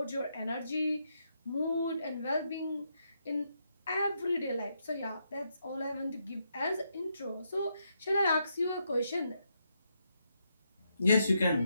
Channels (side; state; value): both; inverted; correlation -0.80